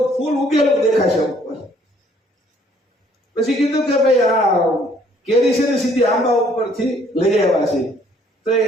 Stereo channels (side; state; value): both; normal; correlation 0.62